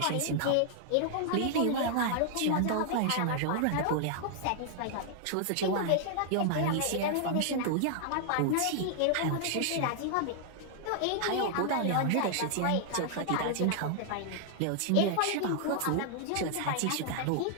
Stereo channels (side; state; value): both; different; correlation -0.01